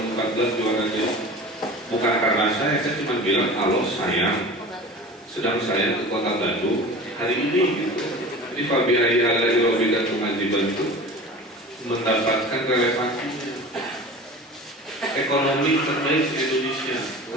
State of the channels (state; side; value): normal; both; correlation 0.36